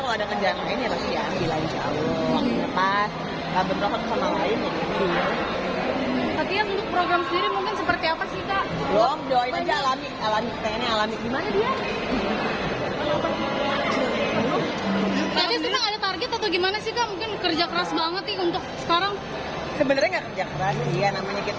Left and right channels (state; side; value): identical; both; correlation 1.00